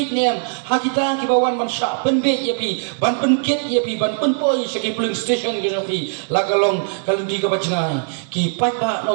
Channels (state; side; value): silent; left; digital silence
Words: nem ha kita ki bawan man sha penbit ya pi ban penkit ya pi ban penpoi segi polling station ke jongpi lagalong kalau di ka bacngai ki pai ba